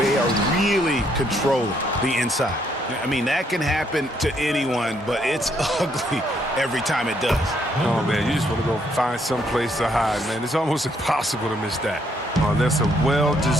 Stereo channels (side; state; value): both; normal; correlation 0.71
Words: are really controlling the inside. I mean, that can happen to anyone, but it's ugly every time it does. Oh, man, you just want to go find some place to hide, man. It's almost impossible to miss that. Oh, that's a